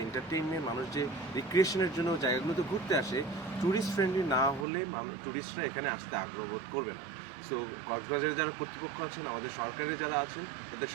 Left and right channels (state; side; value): drops out; left; at 4.7 s